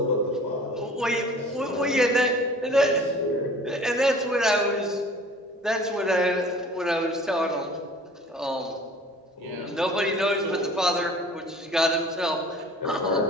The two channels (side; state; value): both; normal; correlation 0.46